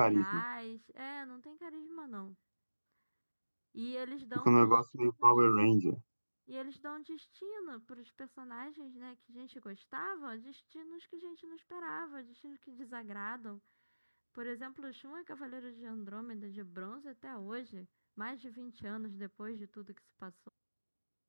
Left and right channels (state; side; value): inverted; both; correlation -1.00